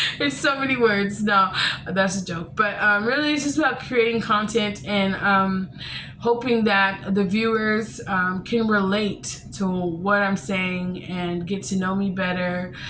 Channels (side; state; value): both; identical; correlation 1.00